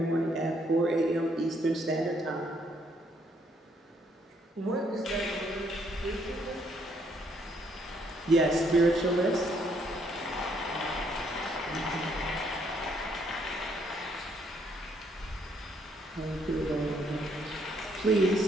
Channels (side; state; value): both; normal; correlation 0.70